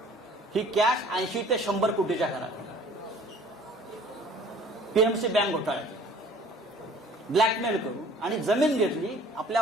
ही कॅश 80 ते 100 कोटीच्या घरात पीएमसी बँक घोटाळ्यात ब्लॅकमेल करून आणि जमीन घेतली. आपल्या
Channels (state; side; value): normal; both; correlation 0.51